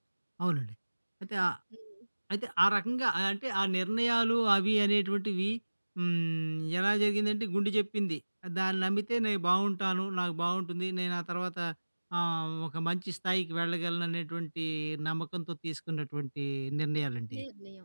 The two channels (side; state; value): both; inverted; correlation -1.00